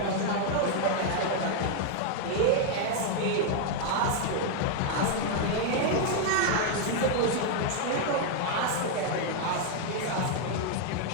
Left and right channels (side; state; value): both; different; correlation 0.00